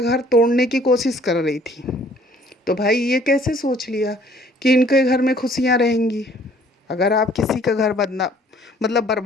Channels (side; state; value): both; normal; correlation 0.58